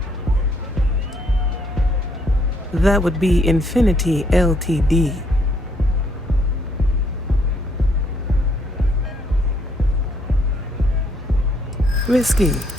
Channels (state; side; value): normal; both; correlation 0.69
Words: That would be Infinity Ltd. Risky,